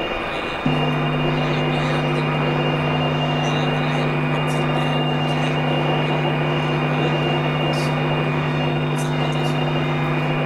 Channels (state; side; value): identical; both; correlation 1.00